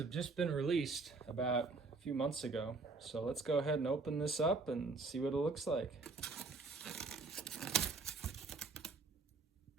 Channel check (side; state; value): left; quieter; 3.9 dB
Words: just been released about a few months ago. So let's go ahead and open this up and see what it looks like.